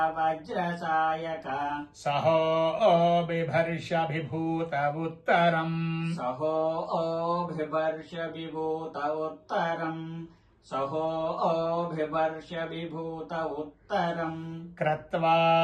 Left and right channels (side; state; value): both; identical; correlation 1.00